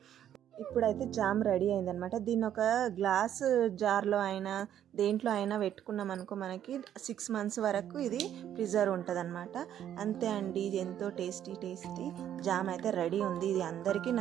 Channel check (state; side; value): quieter; left; 10.5 dB